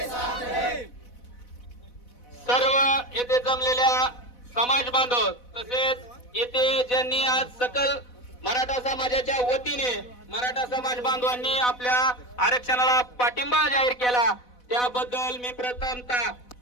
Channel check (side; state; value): right; late; 4.1 ms